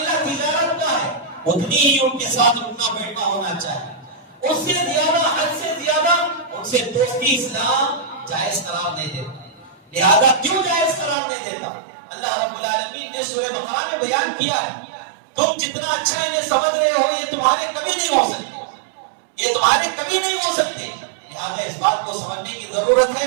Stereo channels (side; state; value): left; drops out; at 11.2 s